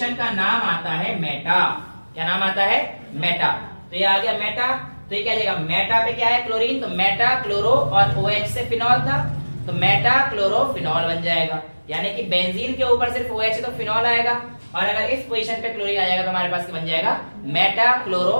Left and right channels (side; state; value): both; inverted; correlation -1.00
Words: का नाम आता है मेटा। क्या नाम आता है? मेटा। तो तो ये आ गया मेटा। तो ये क्या जाएगा, मेटा पे क्या है क्लोरीन, तो मेटा क्लोरो और OH से फिनॉल था, तो मेटा क्लोरोफिनॉल बन जाएगा। यानी कि बेंजीन के ऊपर सिर्फ OH है तो फिनॉल आएगा, और अगर इस पोजीशन पे क्लोरीन आ जाएगा तो हमारे पास बन जाएगा मेटा